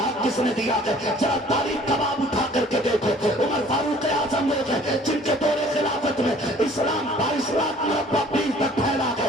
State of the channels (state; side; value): normal; both; correlation 0.53